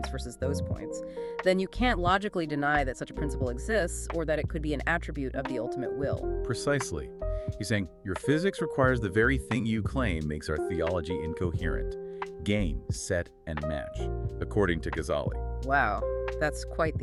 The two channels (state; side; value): identical; both; correlation 1.00